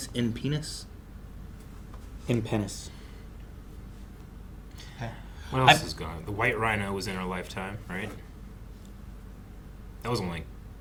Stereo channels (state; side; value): identical; both; correlation 1.00